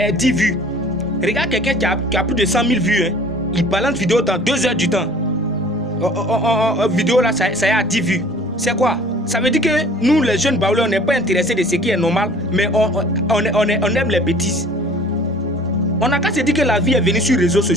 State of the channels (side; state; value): both; normal; correlation 0.49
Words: 10 vues. Regarde quelqu'un qui a plus de 100 000 vues, hein. Il balance vidéo dans 2 heures du temps. Vidéo là, ça y est à 10 vues. C'est quoi? Ça veut dire que nous, les jeunes baoulés, on n'est pas intéressés de ce qui est normal, mais on aime les bêtises. On n'a qu'à se dire que la vie est venue sur les réseaux